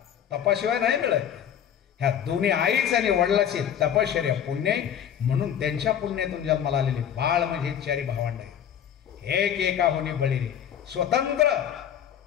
तपाशिवाय नाही मिळत. ह्या दोन्ही आईच आणि वडिलाची तपश्चर्या पुण्य, म्हणून त्यांच्या पुण्यातून जन्माला आलेले बाळ म्हणजे 4 भावंड आहेत. एक एका होणे बळी रे, स्वतंत्र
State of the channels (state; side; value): quieter; right; 9.2 dB